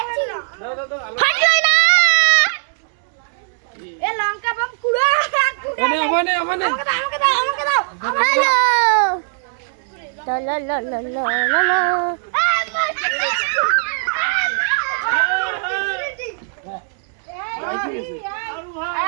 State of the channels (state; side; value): silent; left; digital silence